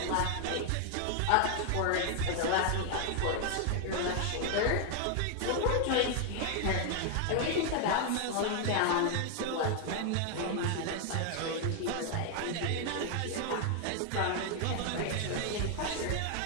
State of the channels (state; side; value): different; both; correlation 0.00